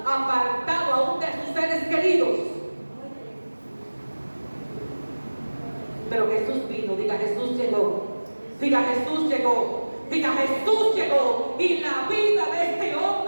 apartado aún de sus seres queridos? Pero Jesús vino, diga Jesús llegó, diga Jesús llegó, diga Jesús llegó, y la vida de este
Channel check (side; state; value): both; inverted; correlation -1.00